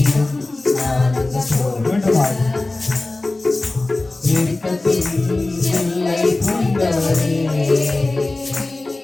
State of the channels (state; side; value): quieter; right; 3.0 dB